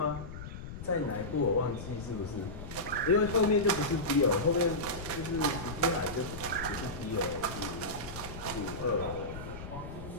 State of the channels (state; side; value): noise; left; rumble, 10 dB below the sound